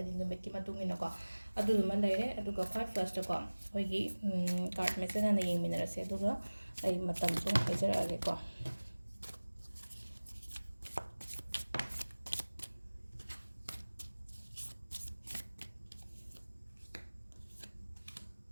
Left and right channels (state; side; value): inverted; both; correlation -1.00